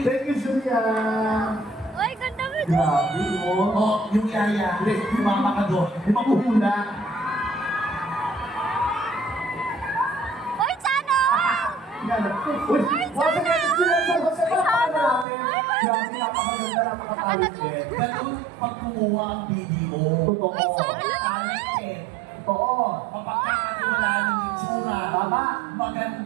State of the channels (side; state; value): left; drops out; at 15.2 s